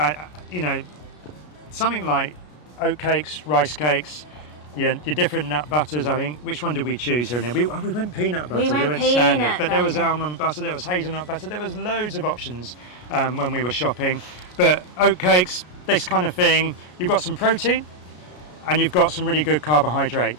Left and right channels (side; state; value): right; late; 33 ms